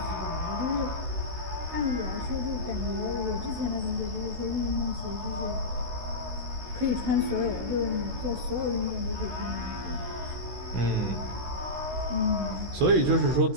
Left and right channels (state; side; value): late; left; 16 ms